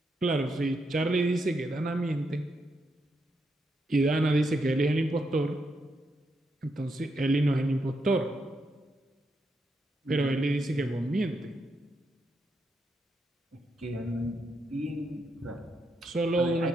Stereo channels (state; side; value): normal; both; correlation 0.81